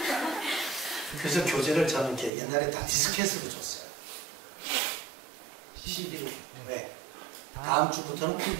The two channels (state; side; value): drops out; left; at 2.3 s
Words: 그래서 교재를 저는 이렇게 옛날에 다 디스켓으로 줬어요. CD로. 왜? 다음 주부터는